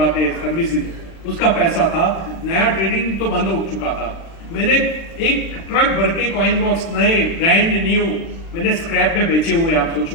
हैं, सर्विसिंग, उसका पैसा था। नया ट्रेडिंग तो बंद हो चुका था। मैंने एक ट्रक भर के कॉइन बॉक्स नए ब्रांड न्यू मैंने स्क्रैप में बेचे हुए। आप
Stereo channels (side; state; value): right; late; 36 ms